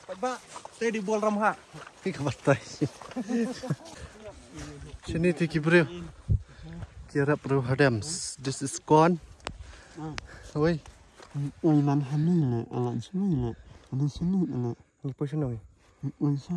Ba, tây đi buông ram hạ. Cái cái tay. Sini ti kibreu. Kira perlu hadams. This is gone. Oi. Oi man hani le, alan sini le. Ada sini le. Ni po sino. Oi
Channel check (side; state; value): both; identical; correlation 1.00